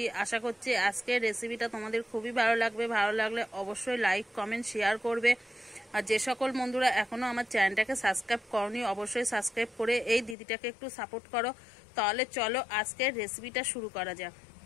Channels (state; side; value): drops out; right; at 10.4 s